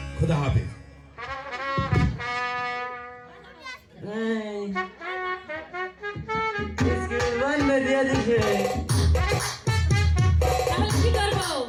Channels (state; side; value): identical; both; correlation 1.00